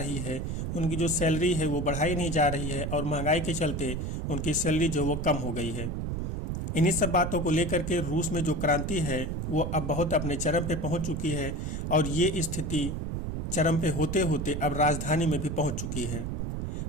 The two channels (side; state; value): right; noise; rumble, 3 dB below the sound